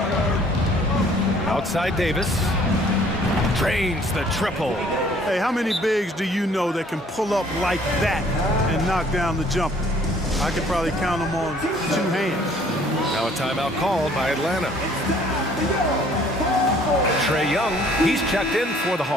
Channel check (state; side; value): normal; both; correlation 0.58